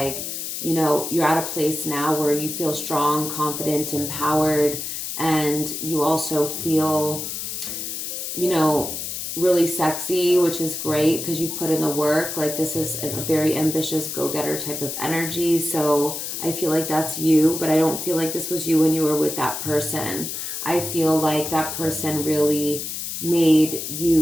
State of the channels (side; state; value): left; noise; hiss, 5 dB below the sound